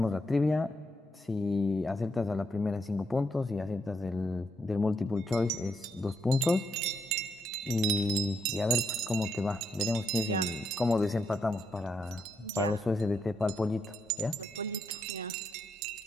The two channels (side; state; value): both; normal; correlation 0.78